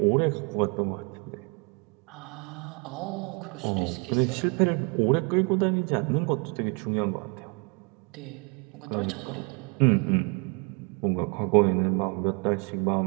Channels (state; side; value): quieter; left; 33.0 dB